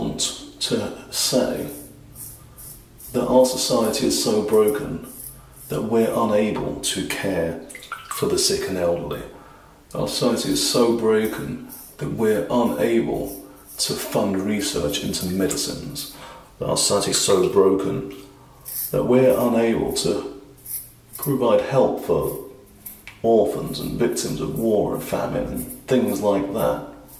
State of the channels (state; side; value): identical; both; correlation 1.00